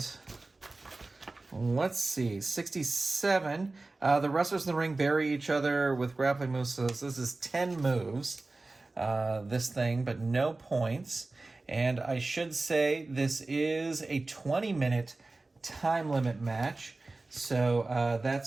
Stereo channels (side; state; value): left; quieter; 3.3 dB